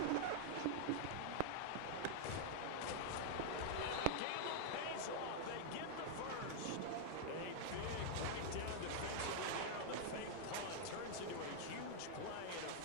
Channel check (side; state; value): both; different; correlation -0.01